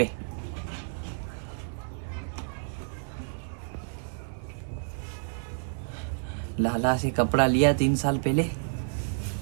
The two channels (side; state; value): left; silent; 58 dB below the other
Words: लाला से कपड़ा लिया 3 साल पहले,